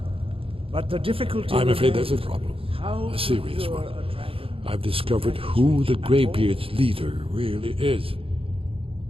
But the difficulty... I'm afraid there's a problem. A serious one. I've discovered who the Greybeard's leader really is.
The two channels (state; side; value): late; left; 0.27 ms